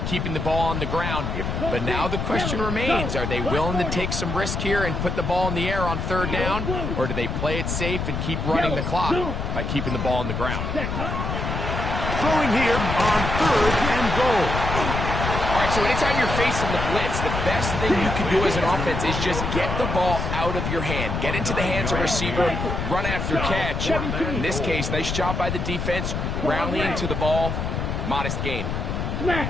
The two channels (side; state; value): left; noise; rumble, 2 dB below the sound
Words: keeping the ball on the ground. But now the question remains, are they willing to take some risk here and put the ball in the air on third down? Or do they play it safe and keep running the clock by keeping the ball on the ground? Throwing here on third and goal. All right, so anytime you're facing the blitz, the best thing you can do as an offense is just get the ball out of your hand. Get into the hands of receiver, run after catch. In this case, nice job by the defense, rallying to the ball. Modest gain.